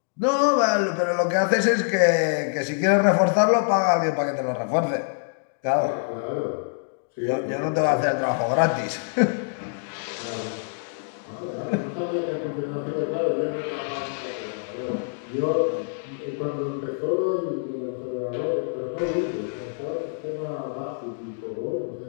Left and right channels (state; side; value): silent; right; digital silence